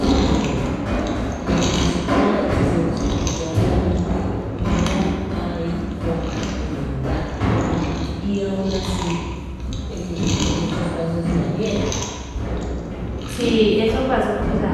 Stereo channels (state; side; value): identical; both; correlation 1.00